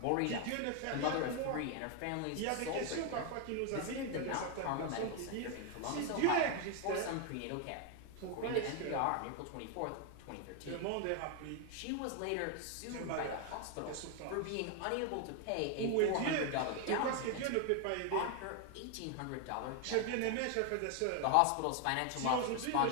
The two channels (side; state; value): both; different; correlation 0.00